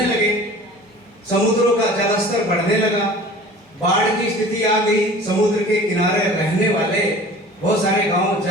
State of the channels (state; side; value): normal; both; correlation 0.43